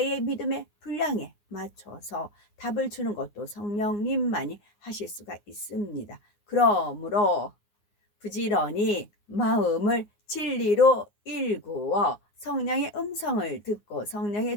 믿음의 분량에 맞춰서 답을 주는 것도 성령님만이 하실 수가 있습니다. 그러므로 부지런히 마음을 진리로 일구어 성령의 음성을 듣고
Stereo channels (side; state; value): right; late; 9.6 ms